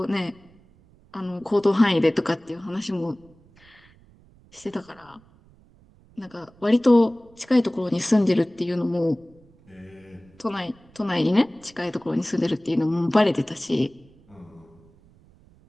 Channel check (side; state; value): right; noise; rumble, 28 dB below the sound